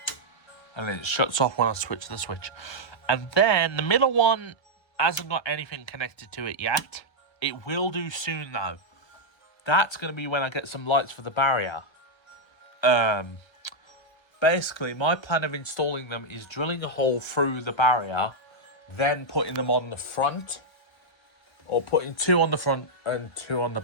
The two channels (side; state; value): right; late; 1.3 ms